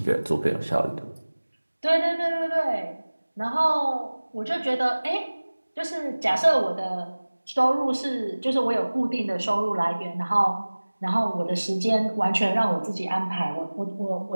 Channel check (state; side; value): inverted; both; correlation -1.00